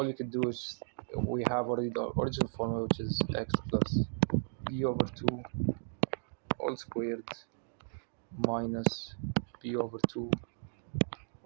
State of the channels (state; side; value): silent; left; digital silence